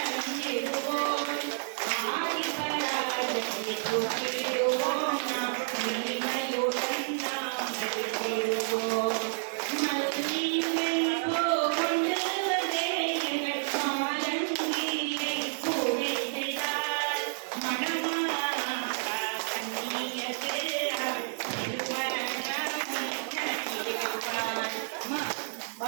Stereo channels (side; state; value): left; silent; digital silence